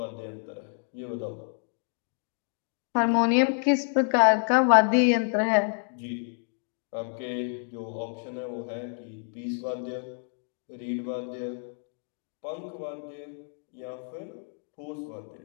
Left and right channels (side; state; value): right; silent; 59 dB below the other